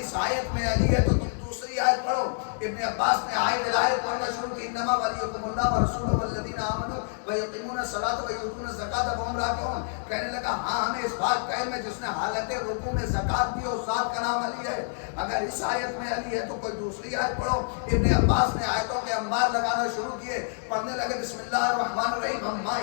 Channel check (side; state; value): right; silent; digital silence